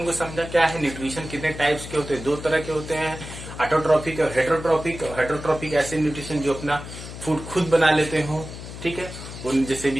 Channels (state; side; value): noise; left; hum, 11 dB below the sound